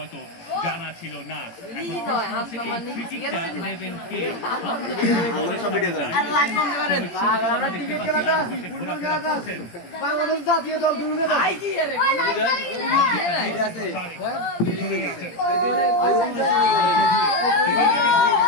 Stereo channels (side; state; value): right; late; 17 ms